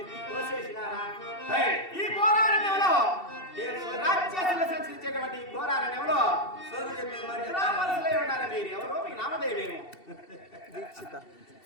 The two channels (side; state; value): right; late; 2.7 ms